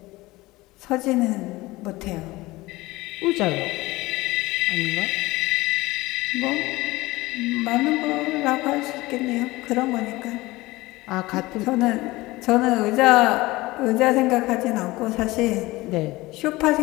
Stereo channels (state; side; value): quieter; right; 19.9 dB